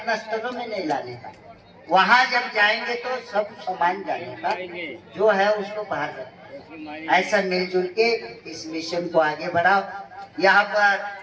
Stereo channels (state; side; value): identical; both; correlation 1.00